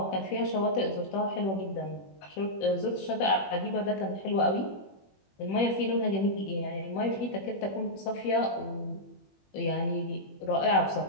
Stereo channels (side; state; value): right; late; 21 ms